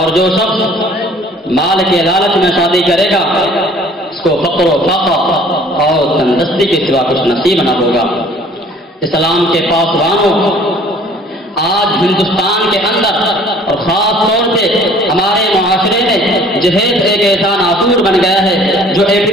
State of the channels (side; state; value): both; normal; correlation 0.53